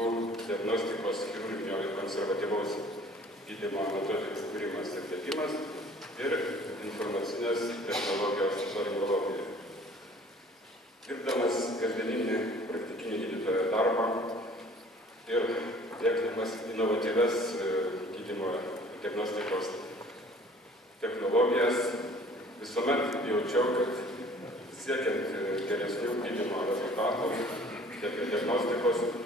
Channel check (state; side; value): normal; both; correlation 0.52